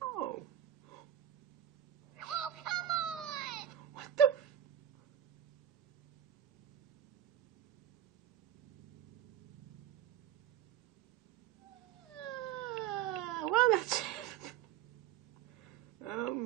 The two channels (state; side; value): quieter; left; 10.9 dB